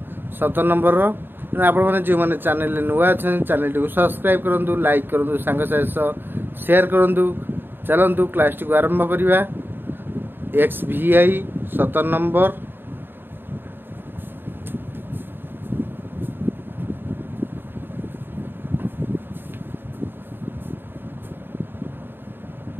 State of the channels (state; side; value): late; left; 0.098 ms